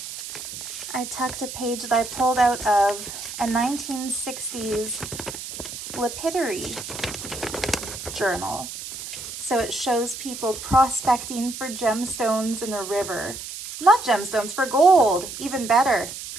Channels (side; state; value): right; noise; hiss, 9 dB below the sound